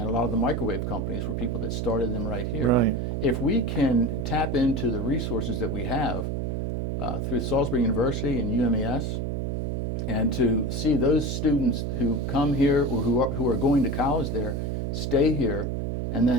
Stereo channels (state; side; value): noise; right; hum, 1 dB below the sound